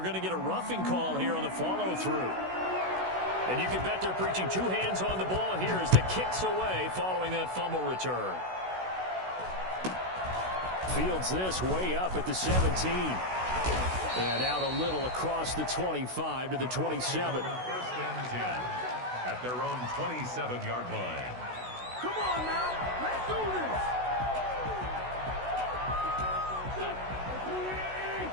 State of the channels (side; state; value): left; late; 16 ms